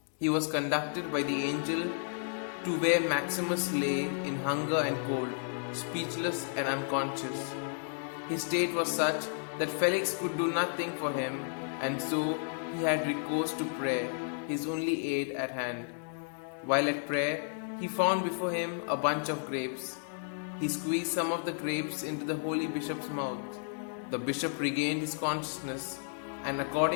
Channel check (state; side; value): silent; right; digital silence